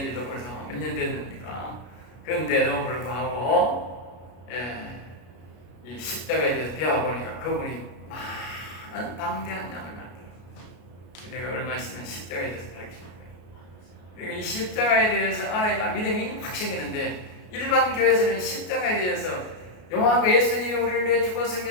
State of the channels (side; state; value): right; late; 33 ms